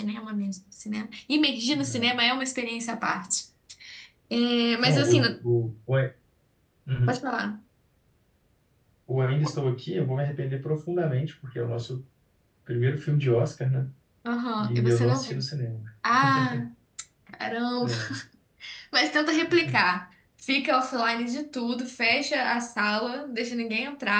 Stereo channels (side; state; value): both; identical; correlation 1.00